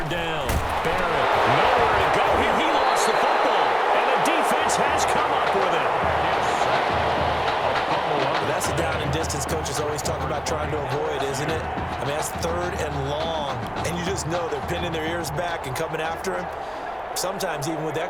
down, Barrett, nowhere to go here. He lost the football, and the defense has come up with it. That's a down and distance coaches always talk about trying to avoid, isn't it? I mean, that's 3rd and long, and you just know they're pinning their ears back and coming after him, sometimes even with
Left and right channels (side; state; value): both; identical; correlation 1.00